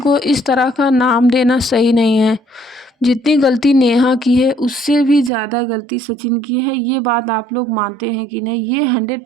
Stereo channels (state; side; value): drops out; left; at 5.3 s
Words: इस तरह का नाम देना सही नहीं है। जितनी गलती नेहा की है उससे भी ज़्यादा गलती सचिन की है। ये बात आप लोग मानते हैं कि नहीं? ये